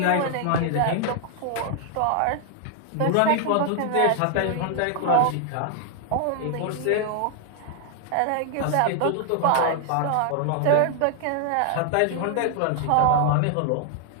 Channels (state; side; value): different; both; correlation 0.00